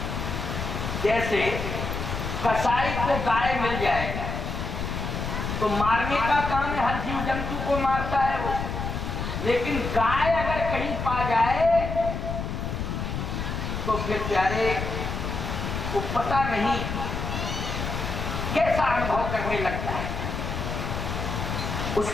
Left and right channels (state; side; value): noise; left; rumble, 4 dB below the sound